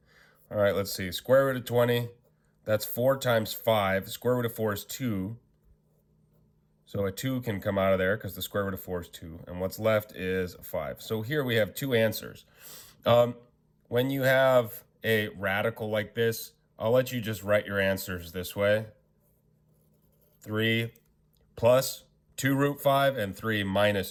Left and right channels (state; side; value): identical; both; correlation 1.00